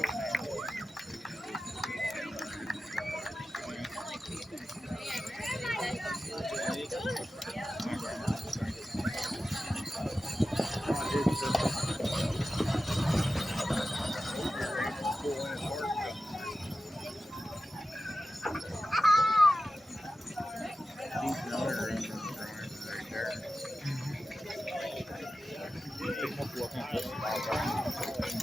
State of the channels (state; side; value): normal; both; correlation 0.93